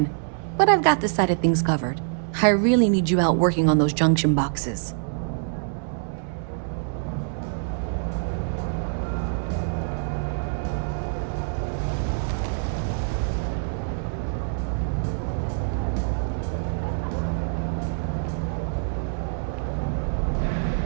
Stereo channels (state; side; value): silent; left; digital silence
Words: But I've got this side of things covered. I really need you out working on those junction boxes.